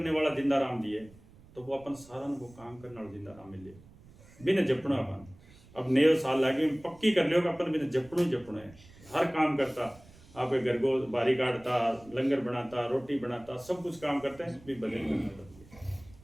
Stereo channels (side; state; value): right; noise; rumble, 23 dB below the sound